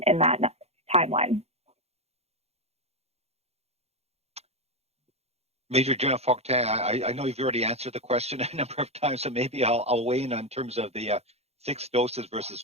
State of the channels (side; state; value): left; late; 0.30 ms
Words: in that timeline? Major General Fortin, I know you've already answered the question a number of times, so maybe I'll weigh in on terms of the 6 doses versus